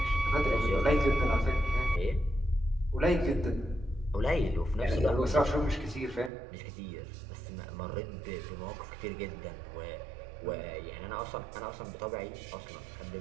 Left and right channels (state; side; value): drops out; left; at 6.3 s